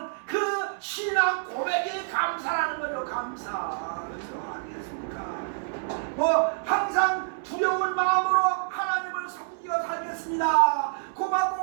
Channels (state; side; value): silent; left; 60 dB below the other